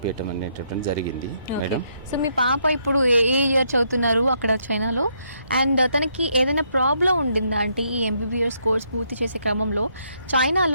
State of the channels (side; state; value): both; inverted; correlation -0.74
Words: అనేటటువంటి జరిగింది మేడం. సో మీ పాప ఇప్పుడు ఏ ఇయర్ చదువుతున్నారు అక్కడ చైనాలో? అండ్ తనకి ఏదైనా ప్రాబ్లం ఉండిందా అంటే ఈ ఎంబీబీఎస్ కోర్స్ పూర్తి చేసే క్రమంలో